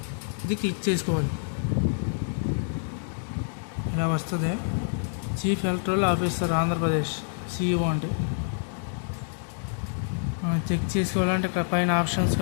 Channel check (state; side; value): silent; right; digital silence